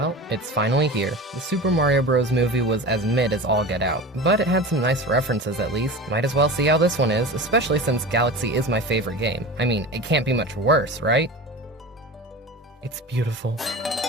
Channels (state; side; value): normal; both; correlation 0.32